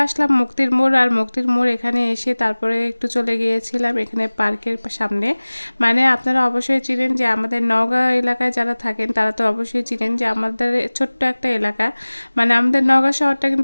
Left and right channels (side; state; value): both; inverted; correlation -1.00